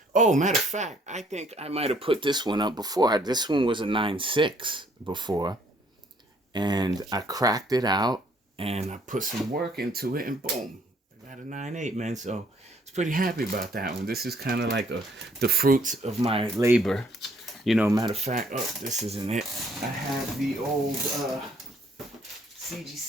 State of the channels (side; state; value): both; normal; correlation 0.64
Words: oh, matter of fact, I think I might have put this one up before. This one was a 9.6 before. And I cracked it out, and I put some work into it, and boom, I got a 9.8, man. So I was pretty happy about that one. This is kind of like the fruits of my labor. You know, matter of fact, oh, this isn't it. I have the old